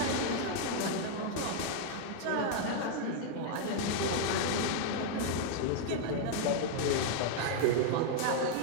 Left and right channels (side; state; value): both; different; correlation 0.00